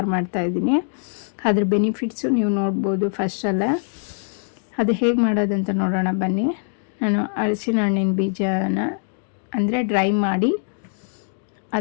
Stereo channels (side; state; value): right; silent; 64 dB below the other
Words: ಮಾಡ್ತಾಯಿದ್ದೀನಿ. ಅದ್ರ ಬೆನಿಫಿಟ್ಸು ನೀವು ನೋಡ್ಬೋದು. ಫಸ್ಟಲ್ಲ ಅದು ಹೇಗೆ ಮಾಡೋದಂತ ನೋಡೋಣ ಬನ್ನಿ. ನಾನು ಹಲಸಿನ ಹಣ್ಣಿನ ಬೀಜನ ಅಂದರೆ ಡ್ರೈ ಮಾಡಿ